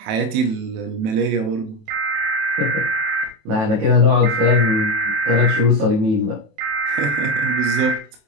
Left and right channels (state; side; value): late; left; 27 ms